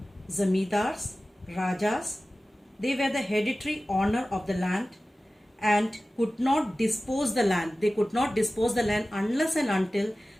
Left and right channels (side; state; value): both; normal; correlation 0.96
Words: zamindars, rajas, they were the hereditary owner of the land and could not dispose the land. They could not dispose the land unless and until